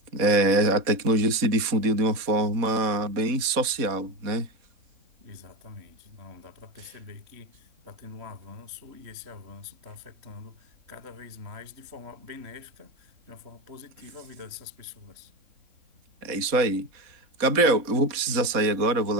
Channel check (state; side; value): late; left; 4.1 ms